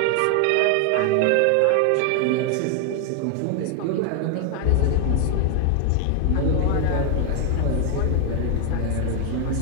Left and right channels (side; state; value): both; different; correlation 0.01